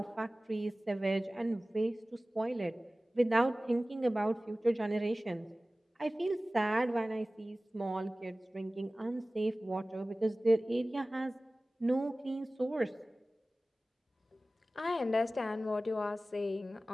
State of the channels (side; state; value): both; normal; correlation 0.97